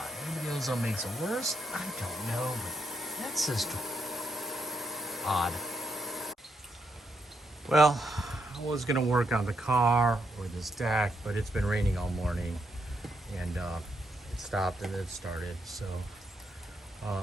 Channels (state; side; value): normal; both; correlation 0.80